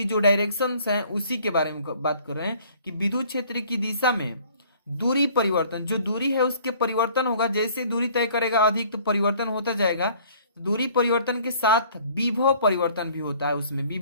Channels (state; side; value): inverted; both; correlation -0.55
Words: जो डायरेक्शंस हैं उसी के बारे में बात कर रहे हैं कि विद्युत क्षेत्र की दिशा में दूरी परिवर्तन, जो दूरी है उसके परिवर्तन होगा, जैसे दूरी तय करेगा अधिक तो परिवर्तन होता जाएगा। दूरी परिवर्तन के साथ विभव परिवर्तन भी होता है, उसमें